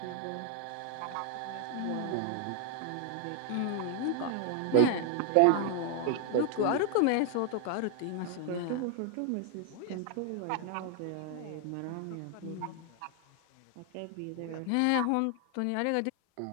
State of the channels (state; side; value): different; both; correlation 0.00